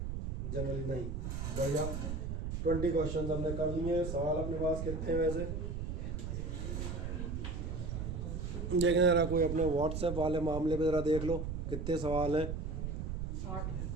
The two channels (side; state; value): right; noise; rumble, 3 dB below the sound